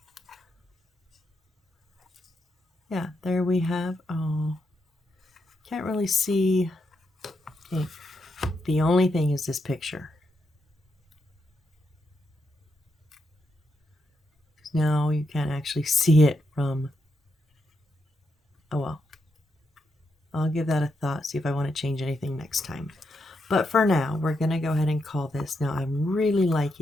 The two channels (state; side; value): normal; both; correlation 0.82